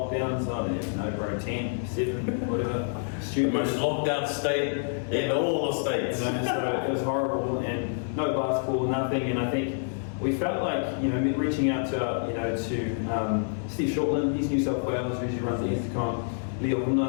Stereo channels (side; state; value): right; silent; 60 dB below the other